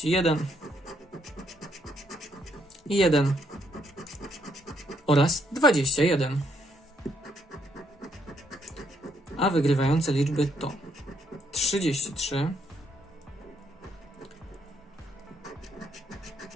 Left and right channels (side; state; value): both; normal; correlation 0.73